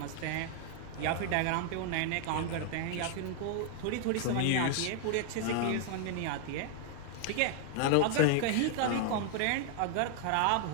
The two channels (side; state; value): both; different; correlation 0.00